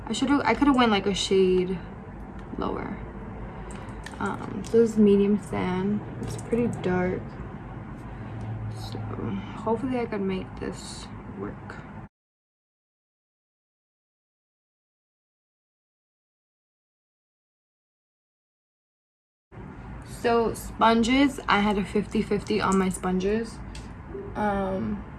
I could have went like a shade lower. So this is medium sand. It's pretty dark. So hopefully I can make this work. So sponges, I had a 50-50 on my sponges.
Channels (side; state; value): both; identical; correlation 1.00